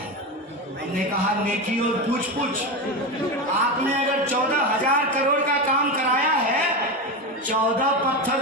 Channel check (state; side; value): normal; both; correlation 0.17